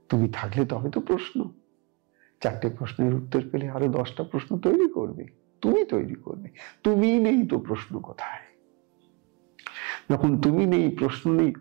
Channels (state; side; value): quieter; left; 29.4 dB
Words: তুমি থাকলে তবে তো প্রশ্ন, 4টে প্রশ্নের উত্তর পেলে আরো 10টা প্রশ্ন তৈরি করবে, তুমি তৈরি করবে। তুমি নেই তো প্রশ্ন কোথায়? যখন তুমি নেই, প্রশ্ন নেই,